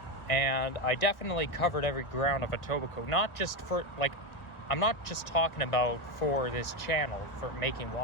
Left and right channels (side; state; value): right; late; 1.2 ms